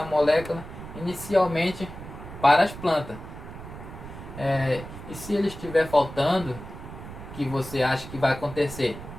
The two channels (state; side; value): noise; right; rumble, 12 dB below the sound